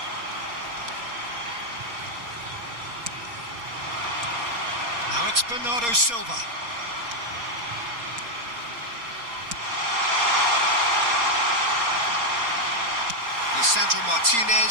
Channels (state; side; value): late; left; 4.3 ms